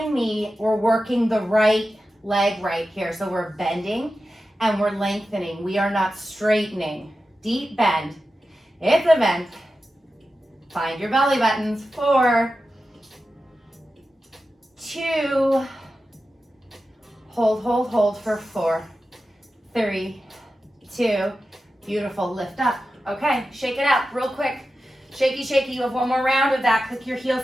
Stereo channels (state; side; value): normal; both; correlation 0.92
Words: me. We're working the right leg right here. So we're bending and we're lengthening. We are not straightening. Deep bend. It's a bend. Find your belly buttons. 4, 2, hold, hold, hold for 4, 3, 2, beautiful, lift up. Okay, shake it out real quick. Shaky, shaky, you have one more round of that. Click your